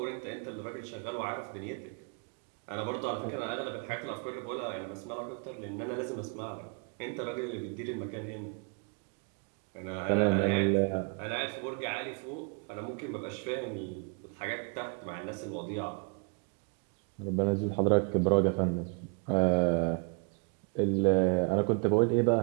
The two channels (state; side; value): quieter; left; 36.1 dB